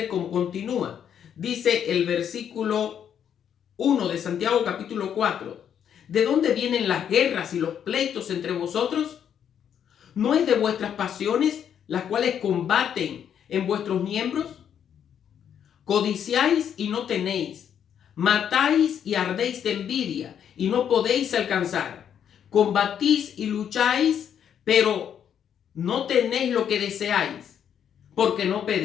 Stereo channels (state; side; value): quieter; right; 8.8 dB